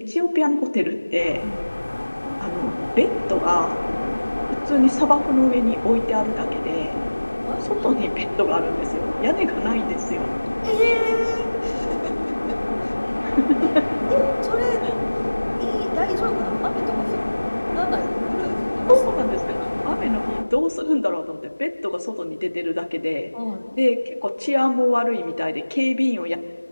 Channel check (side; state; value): both; inverted; correlation -1.00